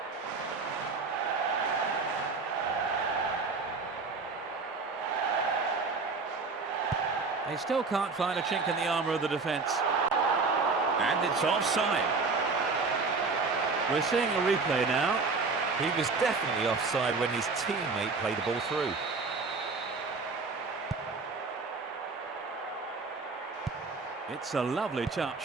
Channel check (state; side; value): quieter; left; 4.2 dB